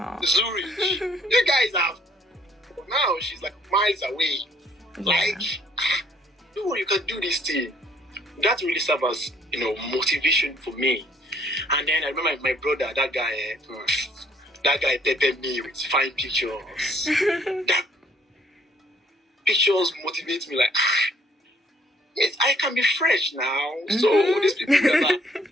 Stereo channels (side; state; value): both; normal; correlation 0.63